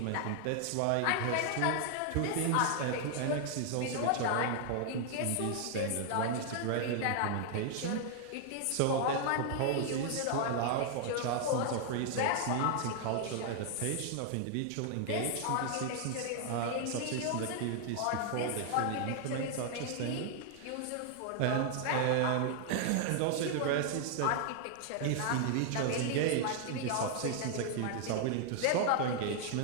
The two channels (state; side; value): different; both; correlation 0.00